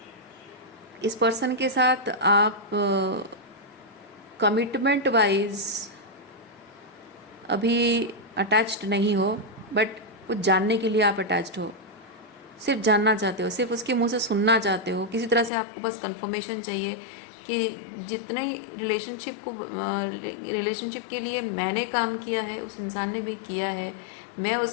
इस पर्सन के साथ आप कमिटमेंट वाइज अभी अटैच्ड नहीं हो, बट कुछ जानने के लिए आप अटैच्ड हो। सिर्फ जानना चाहते हो, सिर्फ उसके मुंह से सुनना चाहते हो, किसी तरह से आपको बस कंफर्मेशन चाहिए कि जितने रिलेशनशिप के लिए मैंने काम किया है उस इंसान ने भी किया है, मैं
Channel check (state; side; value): drops out; right; at 15.5 s